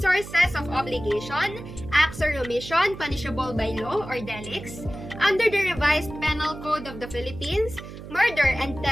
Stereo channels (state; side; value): noise; right; hum, 13 dB below the sound